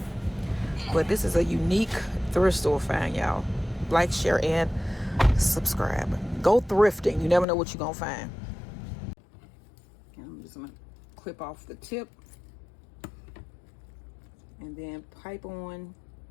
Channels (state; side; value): drops out; right; at 7.5 s